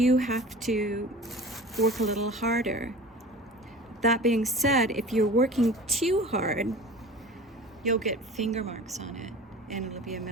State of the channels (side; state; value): both; normal; correlation 0.39